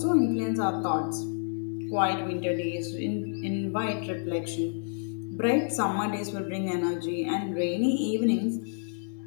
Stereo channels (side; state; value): right; silent; digital silence